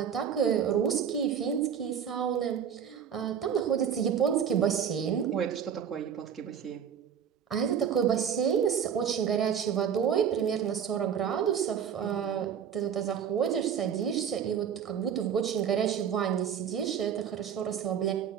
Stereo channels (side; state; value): left; quieter; 8.1 dB